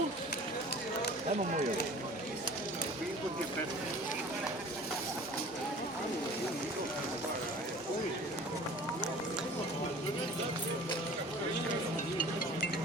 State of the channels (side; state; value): both; normal; correlation 0.44